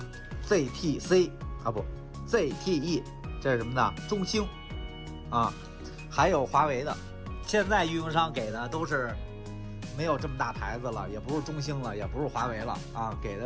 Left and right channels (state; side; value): identical; both; correlation 1.00